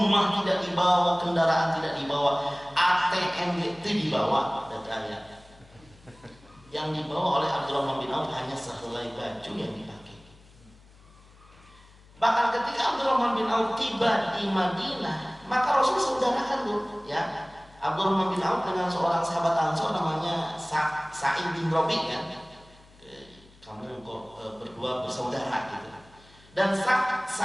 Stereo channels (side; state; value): left; noise; hum, 26 dB below the sound